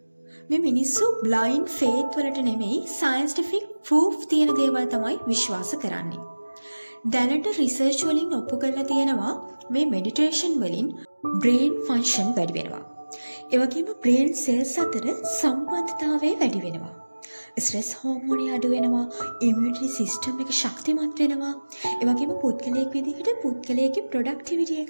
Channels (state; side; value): inverted; both; correlation -1.00